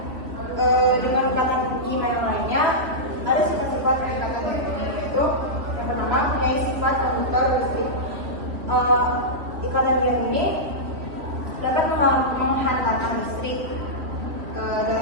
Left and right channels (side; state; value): left; late; 3.1 ms